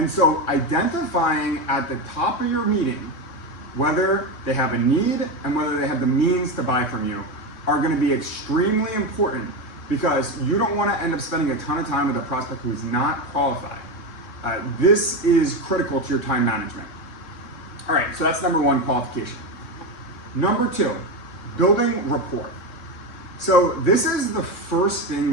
so identifying at the top of your meeting whether they have a need and whether they have the means to buy from you are going to be extremely important, because you don't want to end up spending a ton of time with a prospect who is not qualified. This is critical to your time management. All right, so that's number 1, qualification. Number 2, building rapport. So this is the first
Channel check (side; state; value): right; late; 3.7 ms